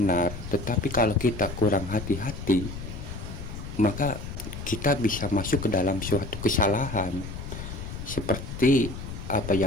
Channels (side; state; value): left; noise; rumble, 9 dB below the sound